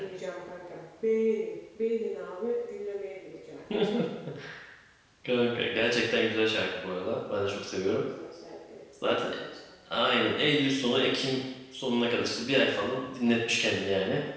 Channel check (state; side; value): identical; both; correlation 1.00